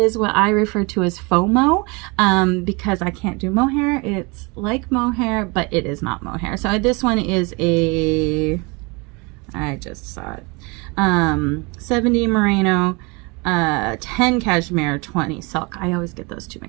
what I refer to as FOMO, because I can't do mohair. It's like mohair, but it is not mohair. So this one is I just saw it, 70 merino, 10 cashmere, 20 silk. I always get those two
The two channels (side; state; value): left; quieter; 28.2 dB